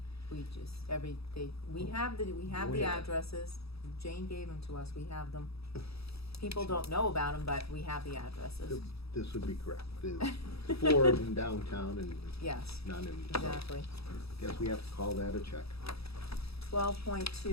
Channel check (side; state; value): right; late; 0.77 ms